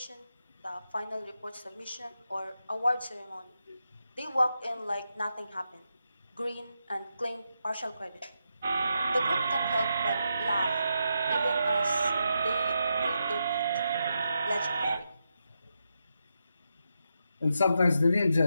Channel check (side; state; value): both; inverted; correlation -0.85